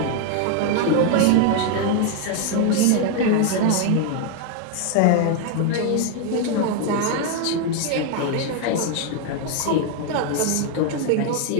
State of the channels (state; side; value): different; both; correlation 0.01